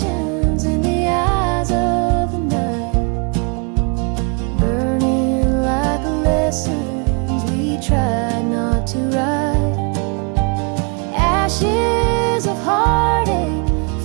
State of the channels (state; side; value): quieter; left; 34.3 dB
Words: in the eyes of the night, burning like lessons we tried not to write. Ashes of heartache